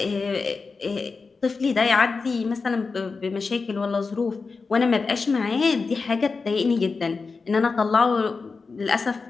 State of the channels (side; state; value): right; quieter; 4.5 dB